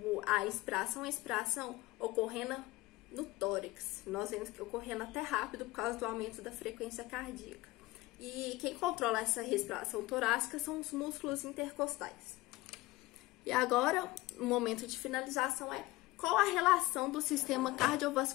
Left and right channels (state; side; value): quieter; right; 19.6 dB